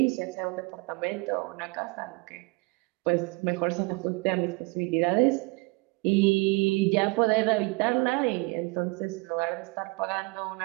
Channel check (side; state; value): left; quieter; 26.4 dB